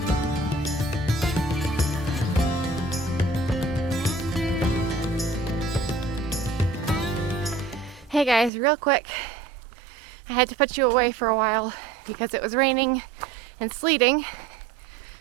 Hey guys, real quick. I had to put you away for a while because it was raining and sleeting.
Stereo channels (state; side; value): drops out; left; at 8.5 s